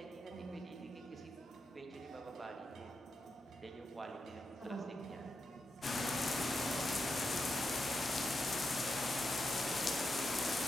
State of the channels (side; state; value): both; normal; correlation 0.86